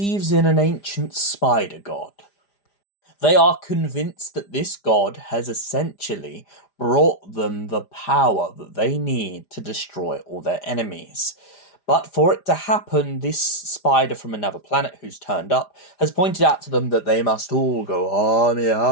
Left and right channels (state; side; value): late; right; 5.0 ms